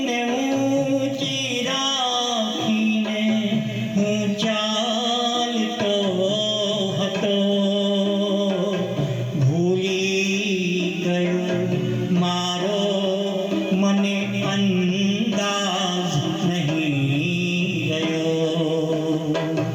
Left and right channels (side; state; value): both; identical; correlation 1.00